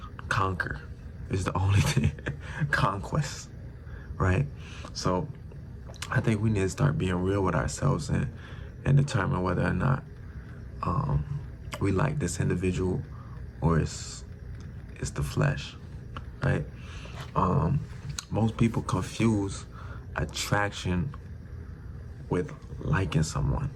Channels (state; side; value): identical; both; correlation 1.00